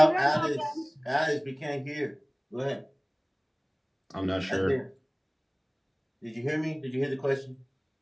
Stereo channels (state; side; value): identical; both; correlation 1.00